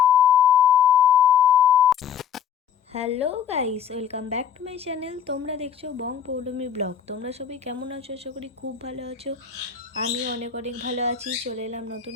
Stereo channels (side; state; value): right; quieter; 8.4 dB